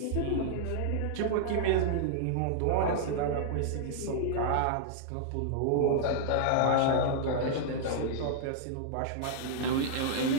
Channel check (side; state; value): both; different; correlation -0.01